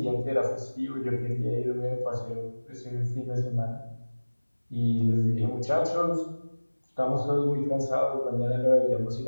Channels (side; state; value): both; inverted; correlation -1.00